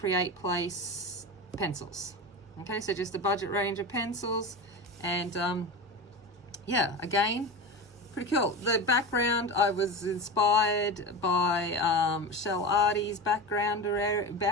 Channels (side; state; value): both; normal; correlation 0.24